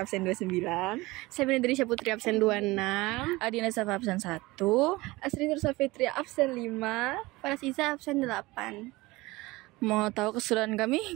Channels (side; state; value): left; quieter; 21.0 dB